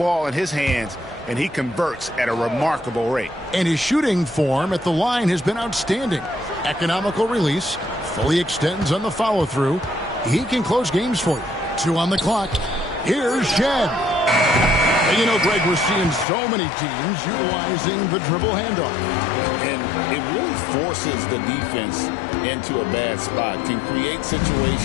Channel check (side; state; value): right; drops out; at 16.2 s